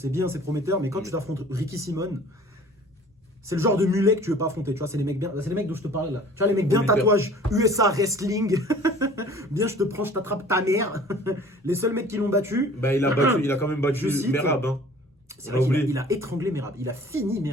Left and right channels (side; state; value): both; normal; correlation 0.48